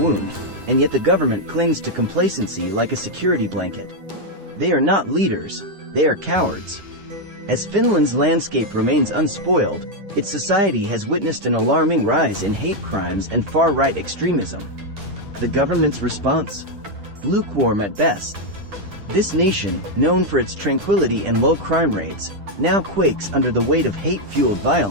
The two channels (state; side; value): late; left; 10 ms